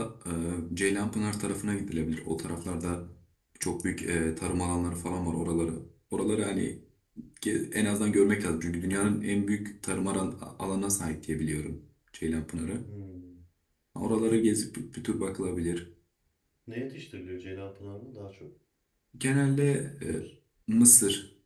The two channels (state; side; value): identical; both; correlation 1.00